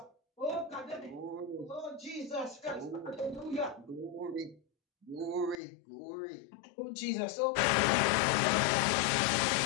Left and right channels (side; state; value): right; drops out; at 5.6 s